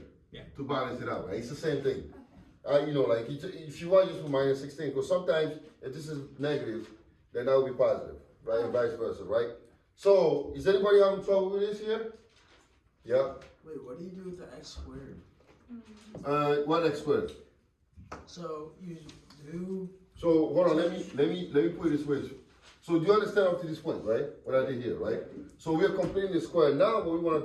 Yeah. To balance it out, right? It's the same thing. Okay. You know, like if you want, just put minus 16, because sometimes if this is negative, then that will be positive, right? And vice versa, right? So, is anybody having trouble with this here? Yeah. Wait, what do you do with the x squared? What x squared? So you do. So hold on, let me put it this way. So do you understand up to this point, right? What I did here, right? So we are completing the square. Now what we want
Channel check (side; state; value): both; identical; correlation 1.00